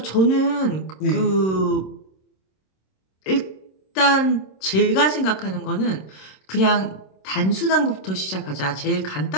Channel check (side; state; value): right; late; 26 ms